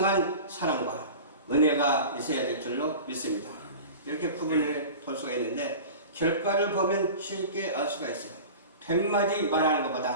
사랑과 은혜가 있어야 될 줄로 믿습니다. 이렇게 구분을 볼 수가 있는데 결과를 보면 쉽게 알 수가 있어요. 100마디 말하는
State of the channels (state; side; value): inverted; both; correlation -0.35